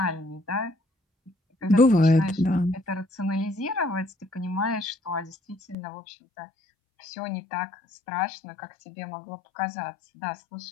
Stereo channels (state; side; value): drops out; right; at 5.8 s